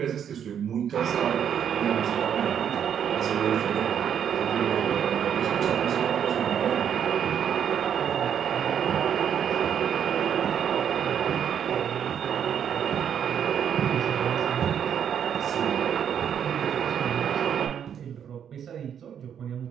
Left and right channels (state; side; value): quieter; left; 8.7 dB